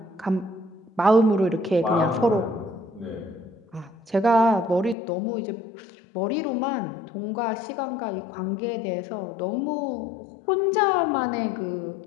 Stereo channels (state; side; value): drops out; right; at 5.0 s